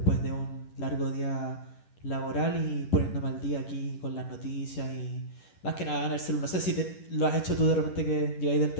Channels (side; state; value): right; late; 11 ms